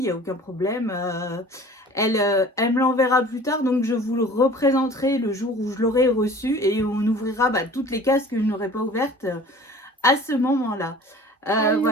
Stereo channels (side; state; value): both; normal; correlation 0.45